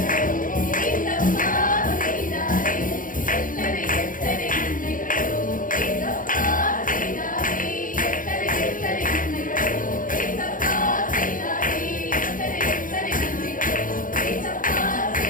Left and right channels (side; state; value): right; late; 0.39 ms